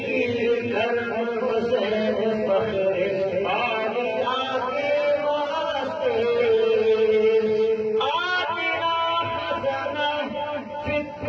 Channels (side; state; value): both; identical; correlation 1.00